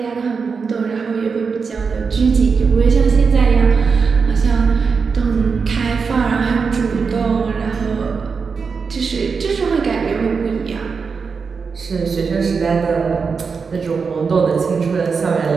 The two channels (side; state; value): left; quieter; 5.3 dB